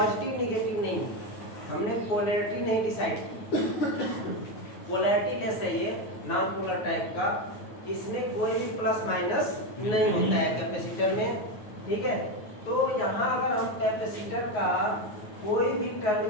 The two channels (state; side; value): late; right; 9.5 ms